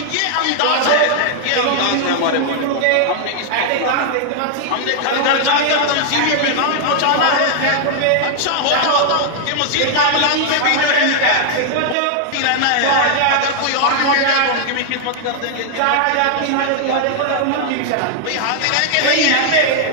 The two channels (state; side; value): different; both; correlation -0.01